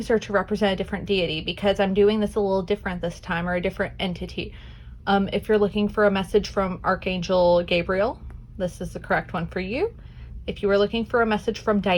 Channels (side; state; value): both; identical; correlation 1.00